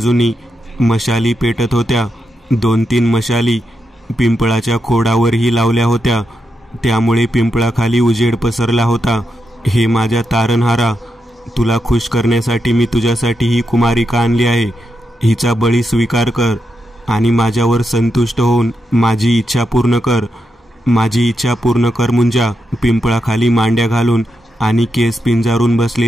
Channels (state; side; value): normal; both; correlation 0.85